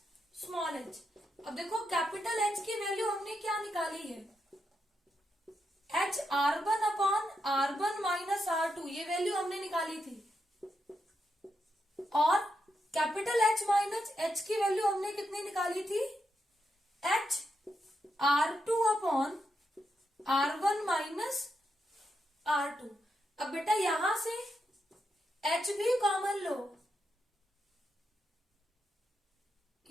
small h। अब देखो कैपिटल H की वैल्यू हमने क्या निकाली है, H R1 upon R1 minus R2, ये वैल्यू हमने निकाली थी। और कैपिटल H माइनस H की वैल्यू हमने कितनी निकाली थी, H R2 upon R1 minus R2। अब बेटा यहां से H भी कॉमन लो,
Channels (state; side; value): normal; both; correlation 0.84